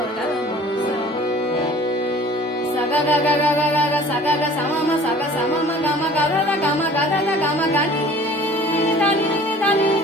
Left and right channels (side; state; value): both; normal; correlation 0.48